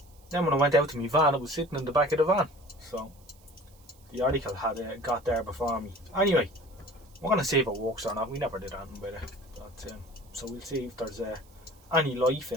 when I went out to my van, it was sitting in the back of the van. So the article had got there before me. Anyway, we're going to see if it works or not. We never did anything with it. But, so we'll see if there's any life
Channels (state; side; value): noise; right; hiss, 29 dB below the sound